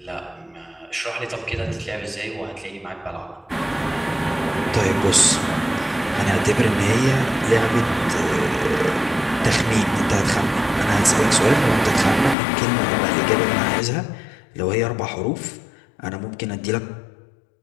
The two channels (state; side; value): drops out; right; at 12.4 s